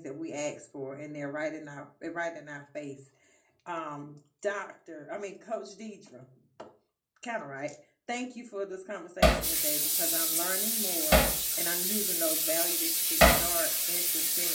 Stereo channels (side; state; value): both; identical; correlation 1.00